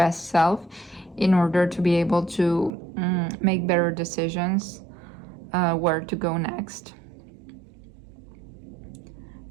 self in order to be able to make better decisions where to go next,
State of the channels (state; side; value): drops out; left; at 2.7 s